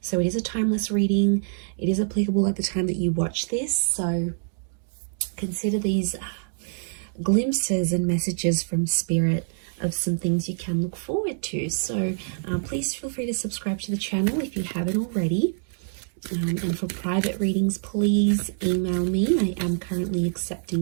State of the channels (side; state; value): left; silent; digital silence